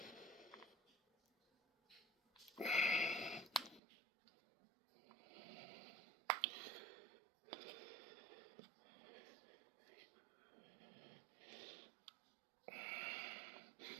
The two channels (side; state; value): left; drops out; at 3.8 s